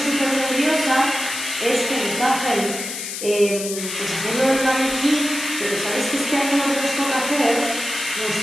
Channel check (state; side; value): noise; left; hiss, 6 dB below the sound